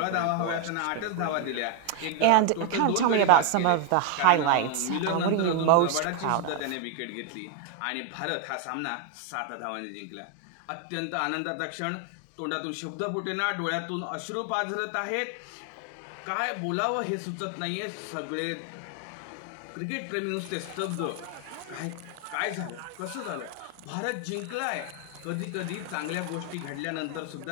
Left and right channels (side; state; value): both; different; correlation 0.00